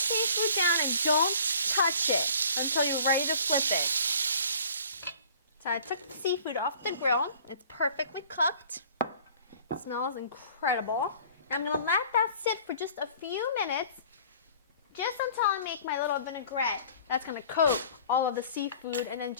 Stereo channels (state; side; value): inverted; both; correlation -0.50